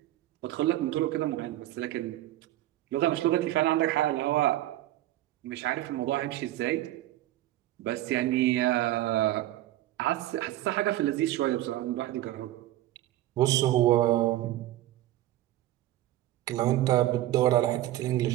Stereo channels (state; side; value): quieter; left; 14.8 dB